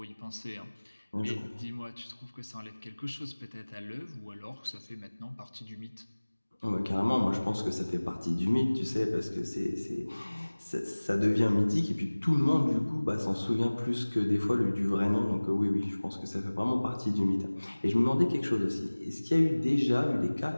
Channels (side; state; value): both; inverted; correlation -1.00